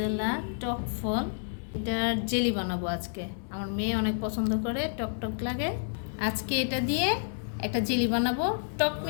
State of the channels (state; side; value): silent; right; digital silence